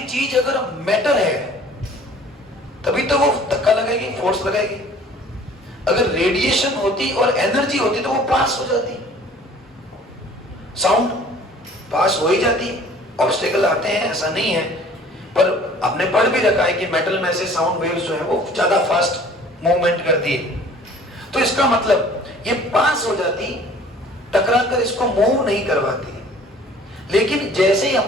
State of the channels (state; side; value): normal; both; correlation 0.51